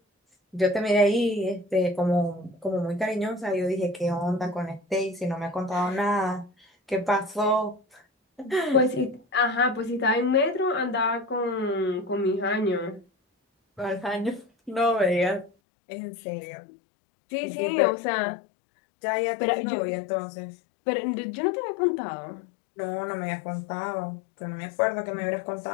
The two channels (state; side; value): drops out; right; at 15.5 s